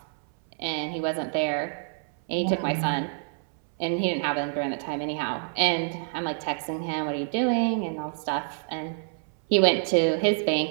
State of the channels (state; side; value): silent; left; 60 dB below the other